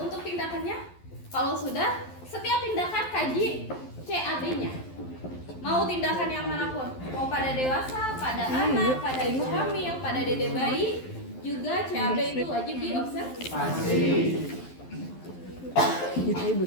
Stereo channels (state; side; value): late; right; 11 ms